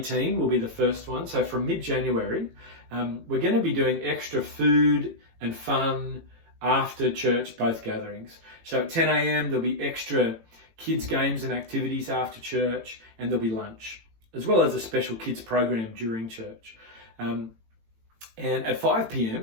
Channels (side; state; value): left; late; 18 ms